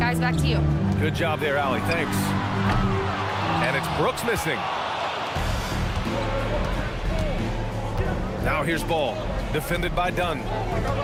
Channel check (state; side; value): identical; both; correlation 1.00